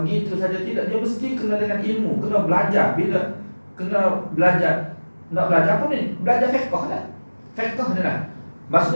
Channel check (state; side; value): inverted; both; correlation -1.00